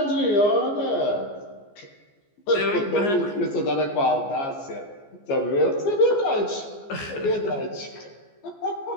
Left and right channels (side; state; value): right; late; 14 ms